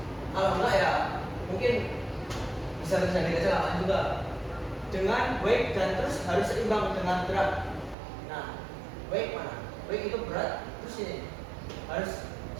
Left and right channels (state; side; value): drops out; left; at 8.0 s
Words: Kalau enggak ya mungkin bisa terjadi kecelakaan juga. Dengan wake dan terus harus seimbang dengan berat. Nah, wake mana? Wake itu berat, terus ini harus